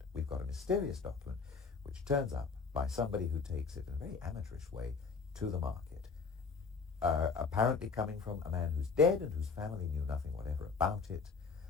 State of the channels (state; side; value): quieter; right; 5.0 dB